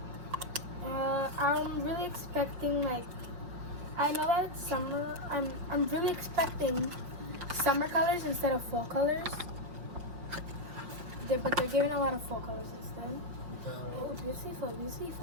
I'm really expecting, like, I know that it's summer. I'm really expecting summer colors instead of fall colors. But they're giving a lot of fall colors instead. Oh, beautiful,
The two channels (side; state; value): left; late; 5.5 ms